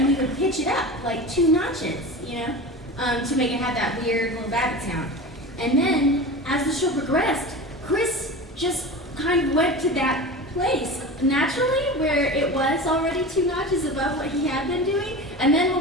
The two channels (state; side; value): normal; both; correlation 0.31